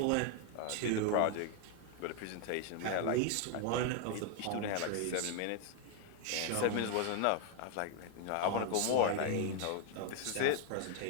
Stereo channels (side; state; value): both; different; correlation 0.00